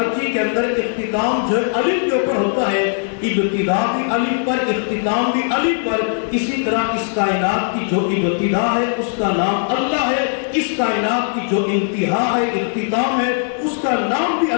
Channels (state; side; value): silent; right; 56 dB below the other